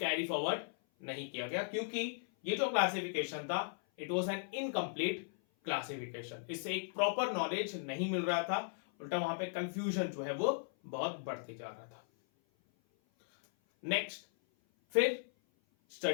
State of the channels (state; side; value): silent; right; 53 dB below the other